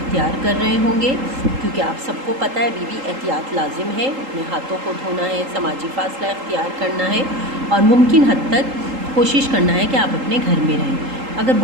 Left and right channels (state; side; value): late; left; 3.8 ms